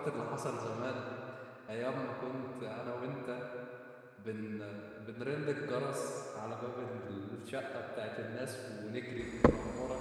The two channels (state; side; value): identical; both; correlation 1.00